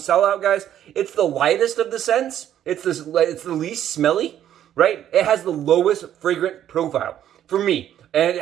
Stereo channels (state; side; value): quieter; left; 10.9 dB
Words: guys, it's the lightest of the scents. It's the least smelly, right? It has the lowest fragrant profile for me. And it